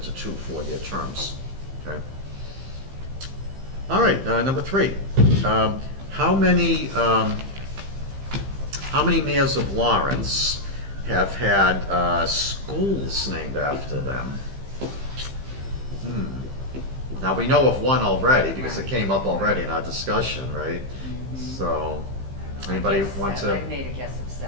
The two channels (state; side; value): late; left; 15 ms